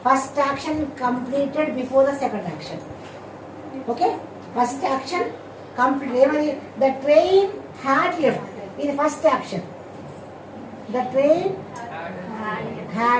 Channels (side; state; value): both; identical; correlation 1.00